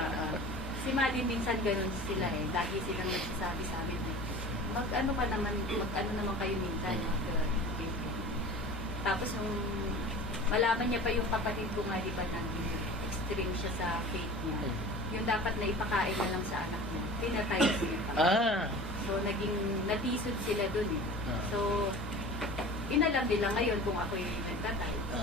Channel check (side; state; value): both; normal; correlation 0.39